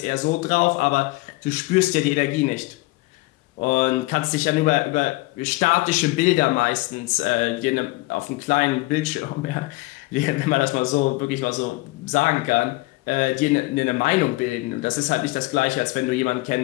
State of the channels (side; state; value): right; quieter; 21.8 dB